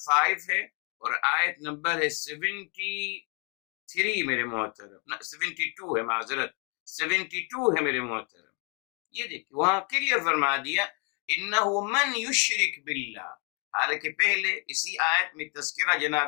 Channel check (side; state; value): right; quieter; 35.4 dB